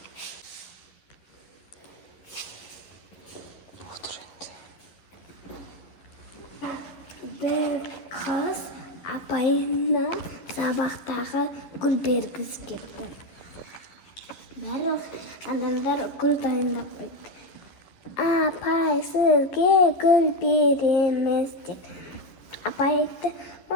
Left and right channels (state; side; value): late; right; 11 ms